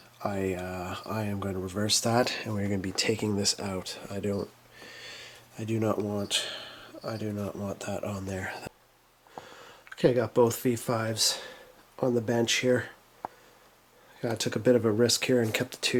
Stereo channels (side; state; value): both; identical; correlation 1.00